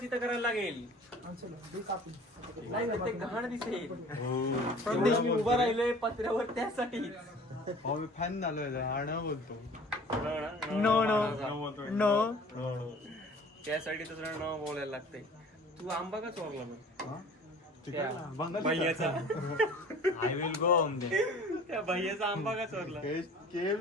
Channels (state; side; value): normal; both; correlation 0.47